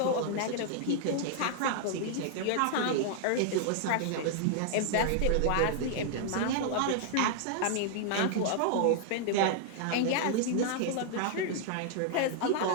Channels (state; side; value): different; both; correlation -0.01